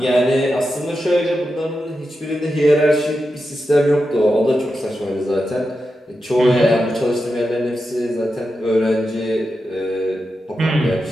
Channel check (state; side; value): normal; both; correlation 0.89